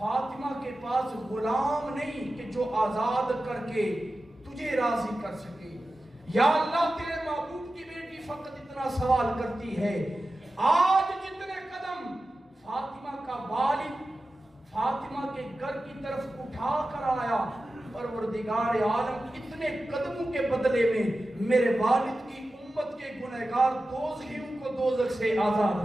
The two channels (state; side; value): normal; both; correlation 0.94